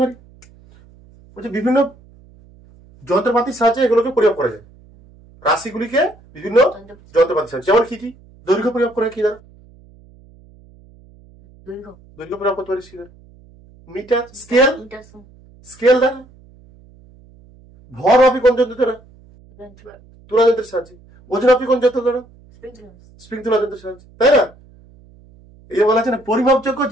পারি, ওই যে বিভিন্ন যন্ত্রপাতির সাহায্যে এগুলোকে পরিমাপ করা যায়। রাশিগুলিকে বিভিন্ন যন্ত্রপাতির সাহায্যে, যেমন কি দৈর্ঘ্য পরিমাপ করে কি দ্বারা? দৈর্ঘ্য পরিমাপ করতে পারি কি দ্বারা? মিটার, স্কেল দ্বারা। ভর মাপি কোন যন্ত্র দ্বারা? তুলা যন্ত্রের সাহায্যে। ওজন মাপি কোন যন্ত্র দ্বারা? স্প্রিং তুলা যন্ত্রের সাহায্যে, তাই না? এই বলা হচ্ছে না পরিমাপযোগ্য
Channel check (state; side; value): noise; right; hum, 26 dB below the sound